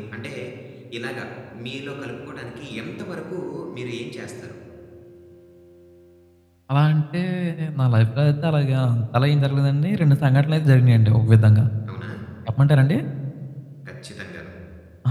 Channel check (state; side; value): identical; both; correlation 1.00